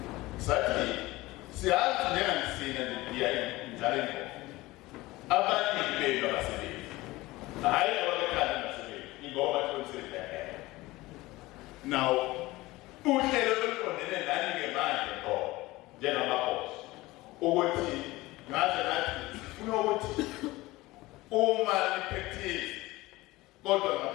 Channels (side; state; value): right; quieter; 19.6 dB